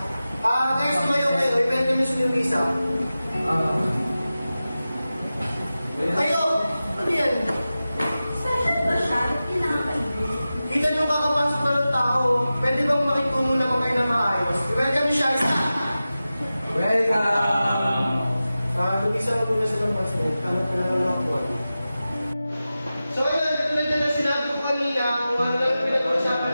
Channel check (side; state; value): both; inverted; correlation -0.95